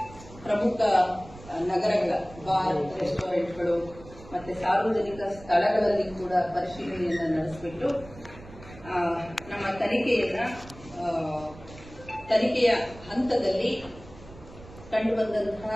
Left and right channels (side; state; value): right; noise; rumble, 18 dB below the sound